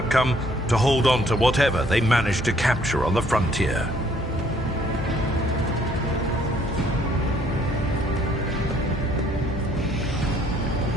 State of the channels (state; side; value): normal; both; correlation 0.63